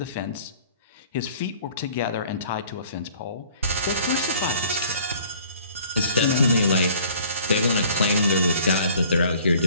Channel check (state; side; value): inverted; both; correlation -0.53